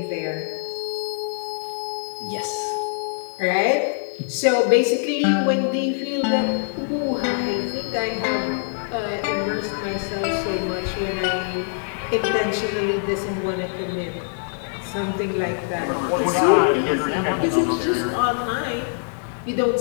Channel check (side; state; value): right; silent; 62 dB below the other